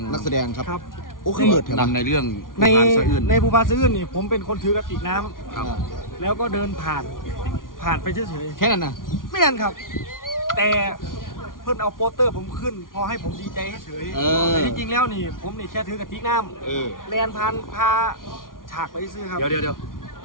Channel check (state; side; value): late; right; 0.90 ms